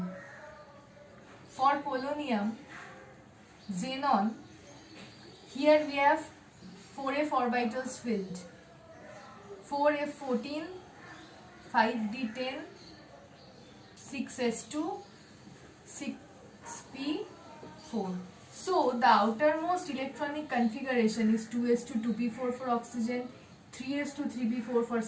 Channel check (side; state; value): both; identical; correlation 1.00